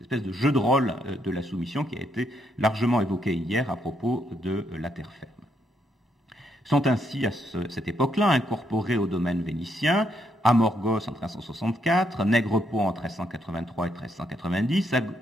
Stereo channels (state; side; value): normal; both; correlation 0.76